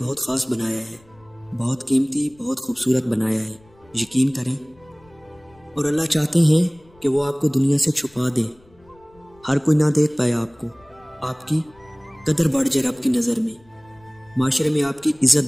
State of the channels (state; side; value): noise; left; rumble, 30 dB below the sound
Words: خاص بنایا ہے، بہت قیمتی، بہت خوبصورت بنایا ہے، یقین کریں۔ اور اللہ چاہتے ہیں کہ وہ آپ کو دنیا سے چھپا دیں، ہر کوئی نہ دیکھ پائے آپ کو، آپ کی قدر بڑھ جائے رب کی نظر میں، معاشرے میں آپ کی